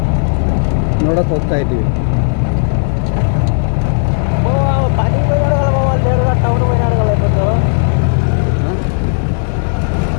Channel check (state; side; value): silent; right; digital silence